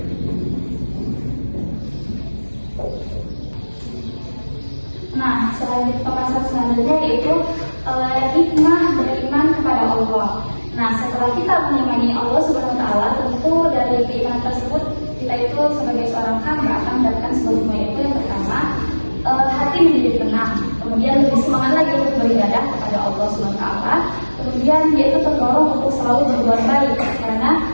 Nah, pembahasan selanjutnya yaitu hikmah beriman kepada Allah. Nah, setelah kita mengimani Allah Subhanahu wa Ta'ala, tentu dari keimanan tersebut kita itu sebagai seorang hamba akan mendapatkan sebuah hikmah, yaitu yang pertama, hati menjadi tenang, kemudian lebih semangat lagi untuk beribadah kepada Allah Subhanahu wa Ta'ala. Kemudian dia itu terdorong untuk selalu berbuat baik karena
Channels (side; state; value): both; inverted; correlation -1.00